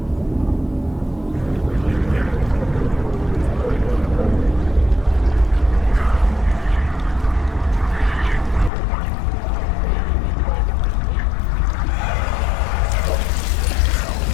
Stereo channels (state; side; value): drops out; right; at 8.7 s